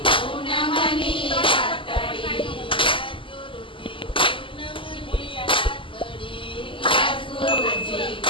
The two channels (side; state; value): right; late; 0.25 ms